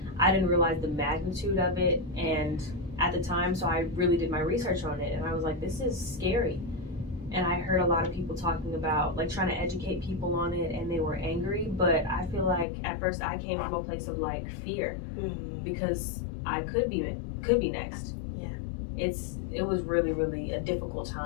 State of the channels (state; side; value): drops out; right; at 12.7 s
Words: I didn't realize the magnitude of it and at the time, so I really did my research on it, and I was like, this is scary. And I heard a lot of people talking about like trying to educate people on it, and they were angry, but I feel like at first I came from a place of like fear because I could be next. Yeah. It was really, really a difficult